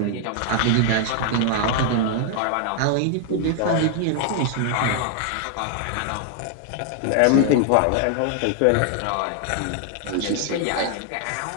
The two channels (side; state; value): both; different; correlation 0.00